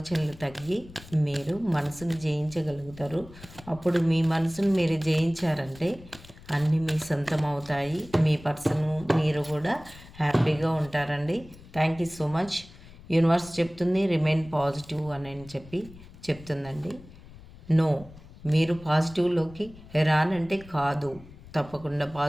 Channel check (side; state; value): left; noise; rumble, 20 dB below the sound